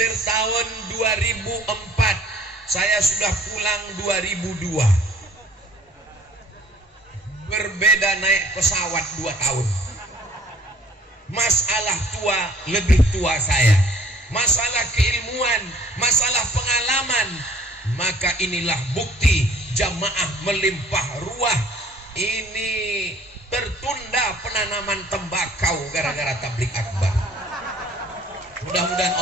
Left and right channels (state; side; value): normal; both; correlation 0.55